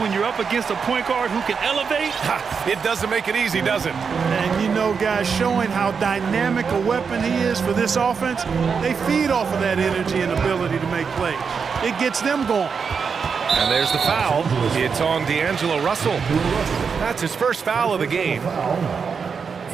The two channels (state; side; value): quieter; left; 5.9 dB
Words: you're up against a point guard who can elevate. It doesn't make it easy, does it? And you know, guys, showing how dynamic a weapon he is for this offense, they feed off of that energy and ability to make plays. It gets them going. And there's the foul. It's on D'Angelo Russell. That's his first foul of the game.